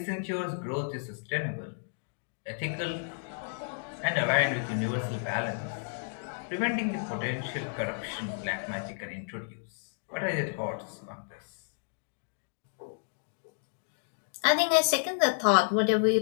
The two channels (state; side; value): silent; right; digital silence